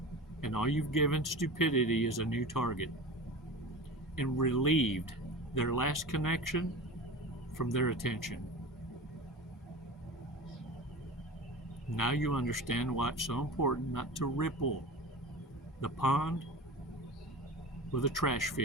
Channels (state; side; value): normal; both; correlation 0.33